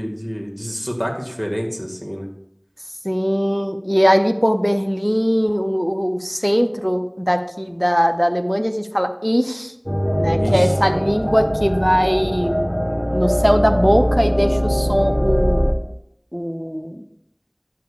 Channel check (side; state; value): both; identical; correlation 1.00